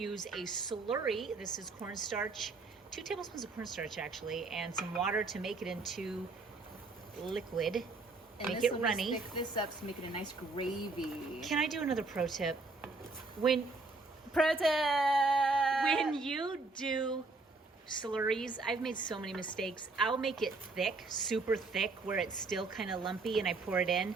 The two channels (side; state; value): left; quieter; 3.6 dB